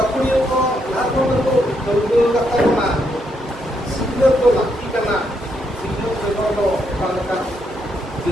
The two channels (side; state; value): both; normal; correlation 0.77